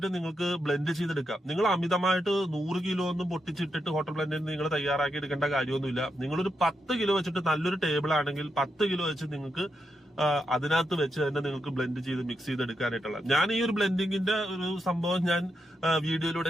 നിങ്ങൾക്ക് ബ്ലെൻഡ് ചെയ്തെടുക്കാം. നിങ്ങൾ അമിതമായിട്ട് 100 കിലോ ഒന്നും പൊട്ടിച്ചിട്ടിട്ട് ഹോട്ടൽ ബ്ലെൻഡിന് നിങ്ങൾ തയ്യാറാക്കി എടുക്കേണ്ട കാര്യമൊന്നുമില്ല. നിങ്ങളൊരു 10 കിലോ വെച്ചിട്ട് നല്ലൊരു ടേബിൾ ആണെങ്കിൽ 10 കിലോ വെച്ച് നിങ്ങൾക്ക് അതിനകത്ത് വെച്ച് തന്നെ നിങ്ങൾക്ക് ബ്ലെൻഡ് ചെയ്ത് മിക്സ് ചെയ്തെടുക്കാനായിട്ടുള്ള. ഞാൻ ഈ ഒരു ബ്ലെൻഡിങ്ങിന്റെ ഒരു സംഭവം ഞാൻ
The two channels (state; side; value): normal; both; correlation 0.84